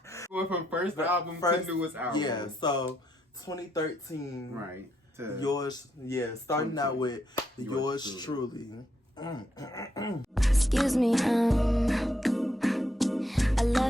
from first album to newest album. Yeah, so 2013. Right. Yours, yeah, starting out with yours truly. Excuse me, I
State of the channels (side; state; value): both; normal; correlation 0.77